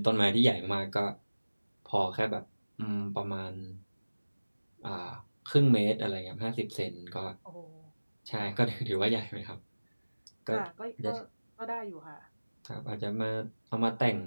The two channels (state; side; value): inverted; both; correlation -1.00